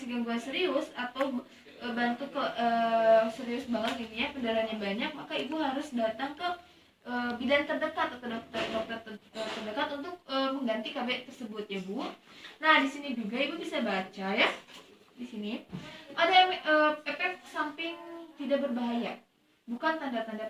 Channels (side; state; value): both; identical; correlation 1.00